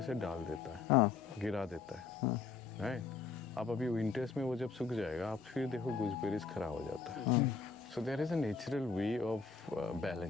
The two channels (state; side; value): quieter; right; 5.0 dB